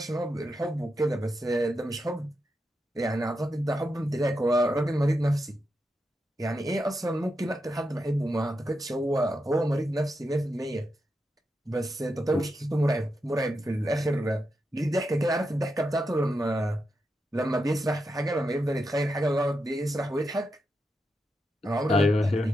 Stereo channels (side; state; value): both; normal; correlation 0.86